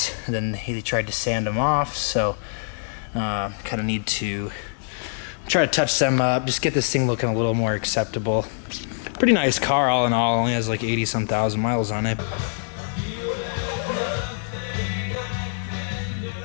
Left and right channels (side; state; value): right; silent; digital silence